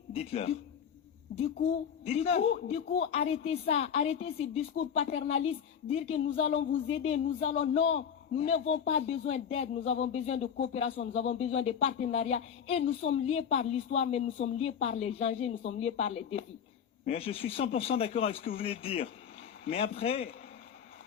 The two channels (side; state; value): right; quieter; 7.7 dB